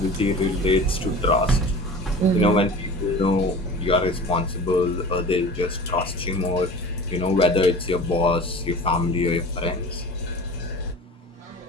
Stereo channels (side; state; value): both; normal; correlation 0.38